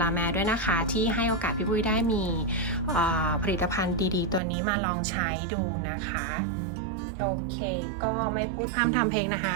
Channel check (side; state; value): left; drops out; at 4.4 s